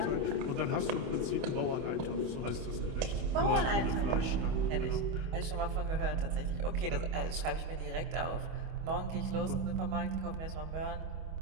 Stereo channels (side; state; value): left; late; 25 ms